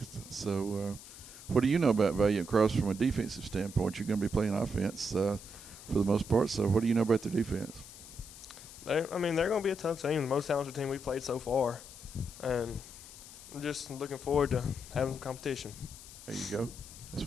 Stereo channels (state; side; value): noise; left; hiss, 16 dB below the sound